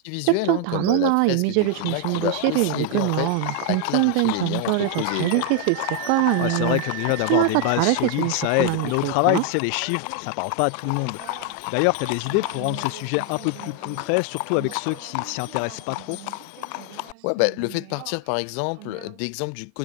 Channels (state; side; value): different; both; correlation 0.01